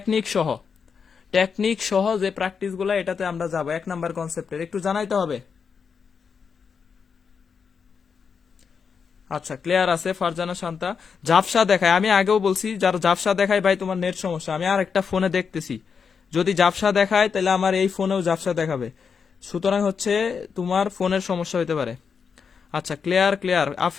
সহ, টেকনিক সহ যে প্র্যাকটিস গুলা, এটাতে আমরা যাবো 1 নাম্বার কনসেপ্টের, একটু জানাইতে হবে। আচ্ছা, ক্লিয়ার আছে ফারজানা শান্তা। ঝাপসা দেখায়, আমি আগেও বলছি যার ঝাপসা দেখায় ভাই তোমার নেট সমস্যা। আমি আর একটা ফোনে দেখতেছি, যদি ঝাপসা দেখায় তাহলে আমার এই ফোনেও ঝাপসা দেখাবে, সুতরাং হচ্ছে তোমার ফোনের সমস্যা হতে পারে। আচ্ছা, ক্লিয়ার ক্লিয়ার।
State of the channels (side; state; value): right; quieter; 6.1 dB